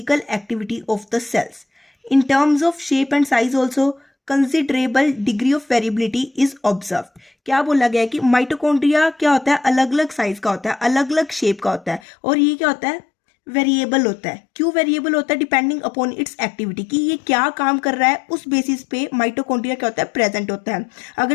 activity of the cells. In terms of shape and size also considerable degree of variability is observed. क्या बोला गया है कि माइटोकॉन्ड्रिया क्या होता है? अलग अलग साइज का होता है, अलग अलग शेप का होता है, और ये क्या होता है? वेरिएबल होता है। क्यों वेरिएबल होता है? डिपेंडिंग अपॉन इट्स एक्टिविटी, कि ये क्या काम कर रहा है उस बेसिस पे माइटोकॉन्ड्रिया क्या होता है? प्रेजेंट होता है। अगर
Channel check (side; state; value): right; drops out; at 12.0 s